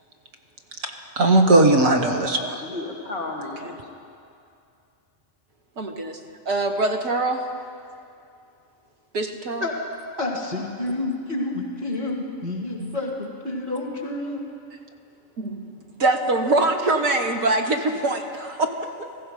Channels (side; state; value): left; late; 5.8 ms